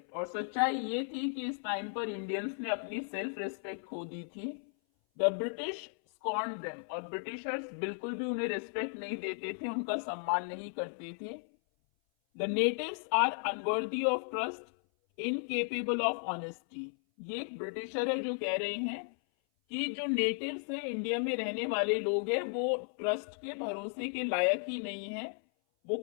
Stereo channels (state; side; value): silent; right; 54 dB below the other